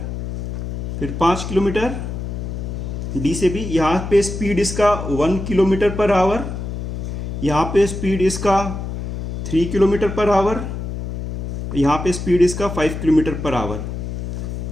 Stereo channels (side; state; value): left; noise; hum, 5 dB below the sound